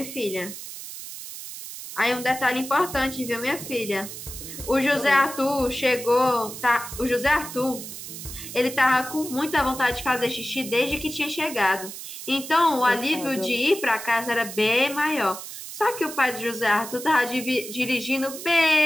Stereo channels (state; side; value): noise; right; hiss, 10 dB below the sound